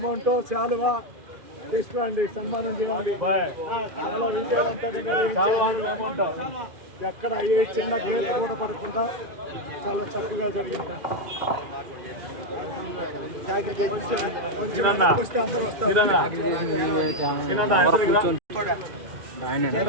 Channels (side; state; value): left; late; 2.4 ms